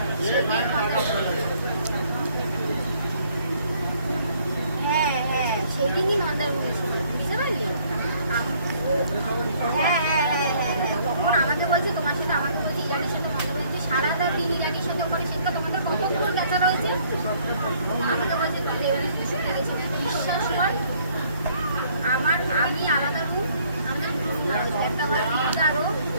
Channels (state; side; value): inverted; both; correlation -0.62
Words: হ্যাঁ হ্যাঁ সেদিনই মন্দারমণি ছিল, বুঝতে পারলি? হ্যাঁ হ্যাঁ হ্যাঁ হ্যাঁ হ্যাঁ তখন আমাকে বলছে তোমার সাথে, আমাকে বলছে ইরানির সাথে মন্দারমণি সারাটা দিন ইরানির সাথে ওখানে, সেটা তোমাদের কতক্ষণ গেছা রয়েছে। আমাকে বলছে তুমি এবারে শুনে গেছি, বিশ্বাস কর আমি আলাদা রুম, আমাদের একটা ঘরে আরো